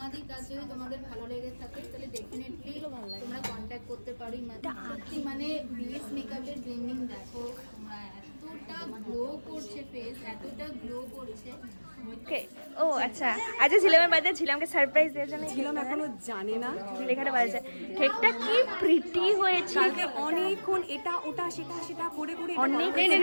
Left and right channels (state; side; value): inverted; both; correlation -1.00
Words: কাজ যদি তোমাদের ভালো লেগে থাকে তাহলে ডেফিনেটলি তোমরা কন্ট্যাক্ট করতে পারো। সত্যি মানে বেস মেকআপের ব্লেন্ডিং দেখো, তোমরা এতটা গ্লো করছে ফেস, এতটা গ্লো করছে। ওকে ও আচ্ছা, আজকে ঝিলামের বাড়িতে ঝিলামকে সারপ্রাইজ দেওয়ার জন্য ঝিলাম এখনো জানে না লেখাটা বাজে। কেকটা কি প্রিটি হয়েছে। অনেকক্ষণ এটা ওটা সেটা সেটা করে করে অনেক